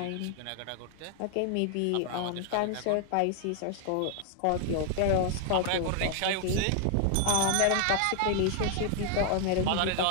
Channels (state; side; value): different; both; correlation 0.00